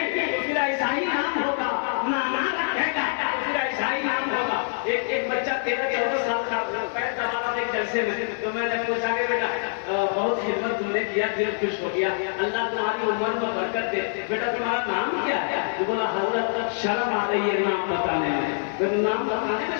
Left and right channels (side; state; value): right; silent; digital silence